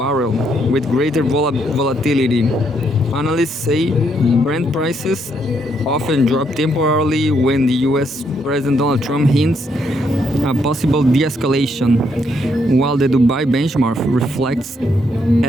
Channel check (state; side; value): normal; both; correlation 0.74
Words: with greater volatility. Analysts say Brent prices often drop temporarily when the US President Donald Trump hints a possible de-escalation, while the Dubai benchmark reflects